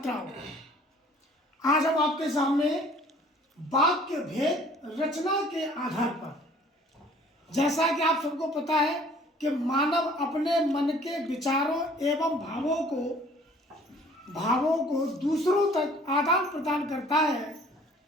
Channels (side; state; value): both; normal; correlation 0.53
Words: आज हम आपके सामने वाक्य भेद रचना के आधार पर, जैसा कि आप सबको पता है कि मानव अपने मन के विचारों एवं भावों को दूसरों तक आदान प्रदान करता है,